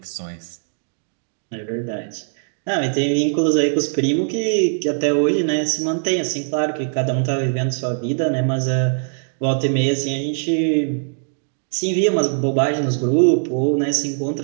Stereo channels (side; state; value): left; silent; digital silence